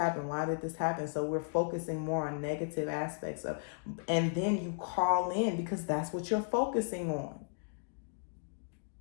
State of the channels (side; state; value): right; silent; digital silence